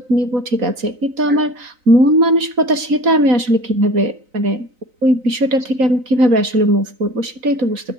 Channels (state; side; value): late; left; 3.9 ms